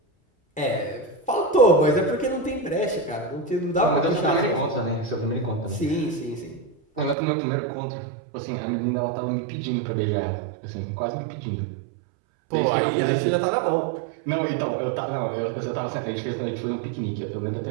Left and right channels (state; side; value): drops out; left; at 7.2 s